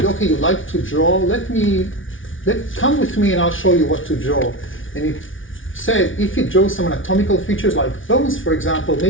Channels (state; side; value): late; right; 0.57 ms